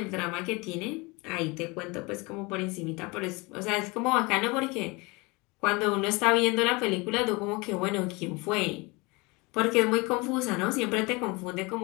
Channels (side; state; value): right; quieter; 26.0 dB